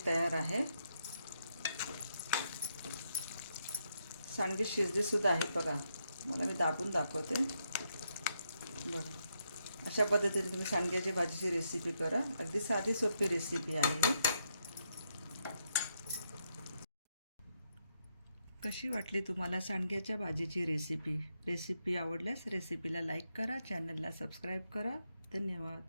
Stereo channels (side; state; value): both; inverted; correlation -0.80